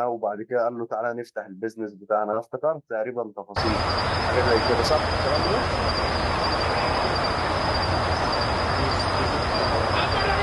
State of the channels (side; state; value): both; identical; correlation 1.00